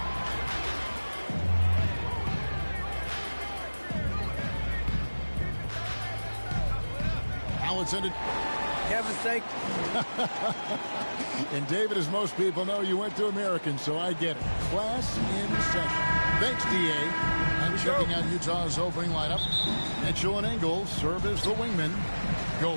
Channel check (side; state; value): both; inverted; correlation -1.00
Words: It's ended. Kevin's sake. And David, as most people know, you went to American, so I get it. Class in session. Thanks, DA. And checking out Utah's opening lineup. Mitchell and Engel serve as the wingman.